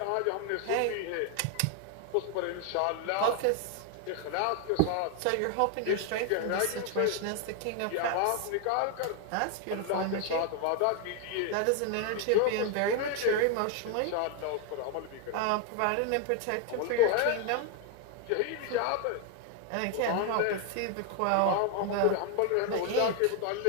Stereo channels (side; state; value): both; different; correlation 0.00